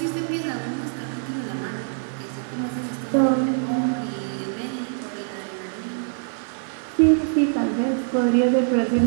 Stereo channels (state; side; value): silent; left; digital silence